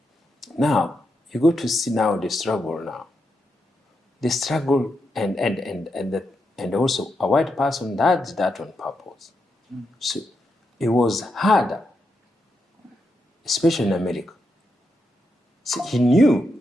Now, you go to see now the struggle now. The struggle and also a white person does that on purpose. So it was harder, especially in America. See, he knew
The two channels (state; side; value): normal; both; correlation 0.84